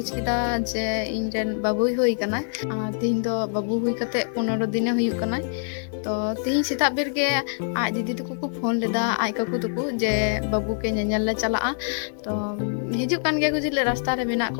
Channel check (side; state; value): right; silent; 62 dB below the other